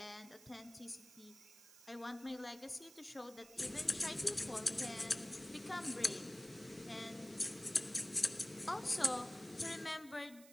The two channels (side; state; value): right; noise; hiss, 19 dB below the sound